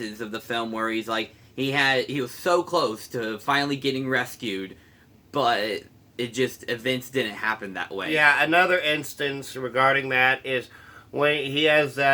of the film where he's like, he was so close to finally getting rescued, but events didn't happen that way. Yeah, another instance regarding that is when he has the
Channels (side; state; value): both; identical; correlation 1.00